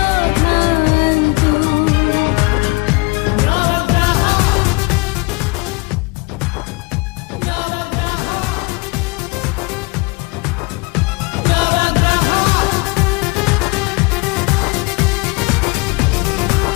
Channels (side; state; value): right; quieter; 26.5 dB